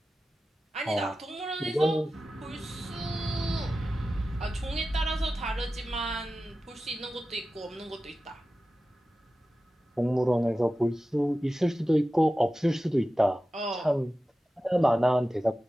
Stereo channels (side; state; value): both; normal; correlation 0.94